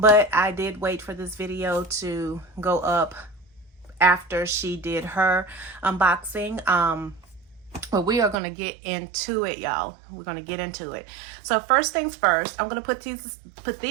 I did wait for this video to go up after she did her unboxing. But we are going to get into it, y'all. We're going to get into it. So first things first, I'm going to put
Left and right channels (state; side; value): drops out; left; at 8.3 s